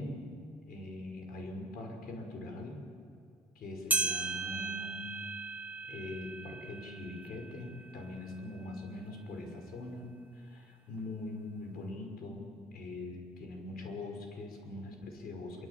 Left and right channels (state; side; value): normal; both; correlation 0.33